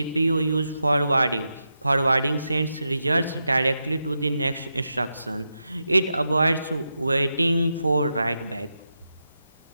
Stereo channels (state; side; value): inverted; both; correlation -0.88